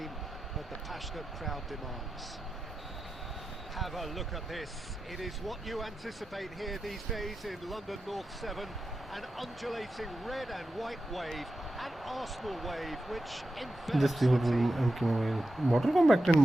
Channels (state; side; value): normal; both; correlation 0.90